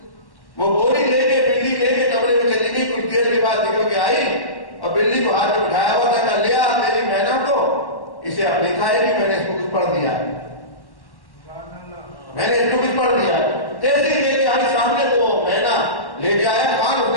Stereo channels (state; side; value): late; right; 1.1 ms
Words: وہ بوری لے کے بلی لے کے کمرے میں چلی گئی. کچھ دیر کے بعد دیکھو کہ آئی اور بلی کو ہاتھ میں بٹھایا ہوا تھا. کہا لیا میری مینا کو، اسے اب نہیں کھائے گی، میں نے اس کو کچھ پڑھ دیا، میں نے اس کو کچھ پڑھ دیا. تیزی لے کے آئی سامنے تو مینا لے کے آیا. خان اس